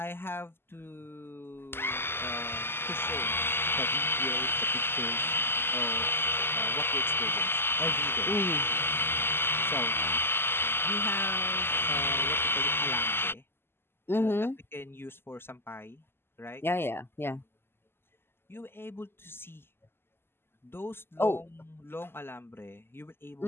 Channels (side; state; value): right; late; 0.11 ms